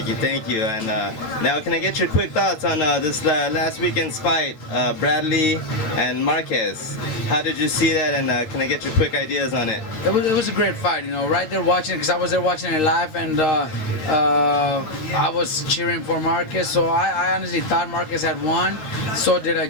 you. And now, can I get your quick thoughts on this last weekend's fight, Bradley and Marquez? How did you see that, and can I get your quick ideas on it? It was a great fight, right there watching, because I was there watching it live, and I was cheering for Marquez, so I honestly thought Marquez had won. So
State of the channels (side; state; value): right; late; 13 ms